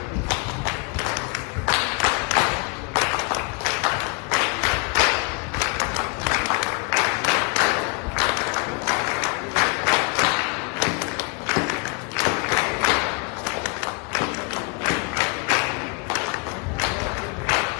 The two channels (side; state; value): right; quieter; 31.6 dB